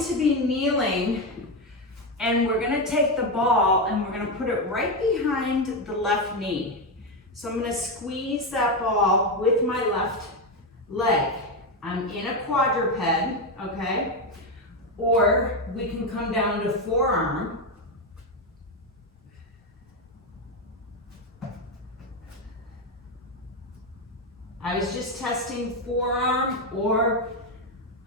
be kneeling, and we're gonna take the ball and we're gonna put it right behind the left knee. So I'm gonna squeeze that ball with my left leg. I'm in a quadruped, okay? Or we can come down to forearm. I was just testing forearm or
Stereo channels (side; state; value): both; normal; correlation 0.10